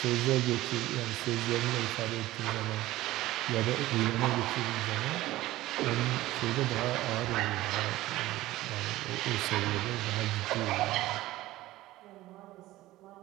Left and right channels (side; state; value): left; quieter; 16.7 dB